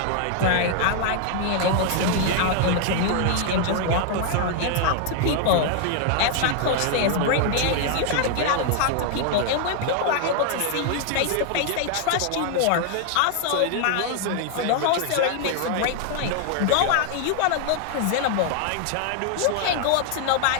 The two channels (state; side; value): different; both; correlation 0.00